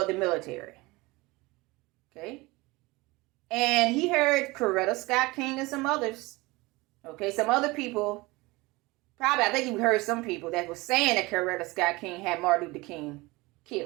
the military. Okay. And he heard Coretta Scott King and some others. Okay, some other people. Probably, I think he heard some people that was saying that Coretta Scott King had Martin Luther King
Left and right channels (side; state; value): left; quieter; 22.6 dB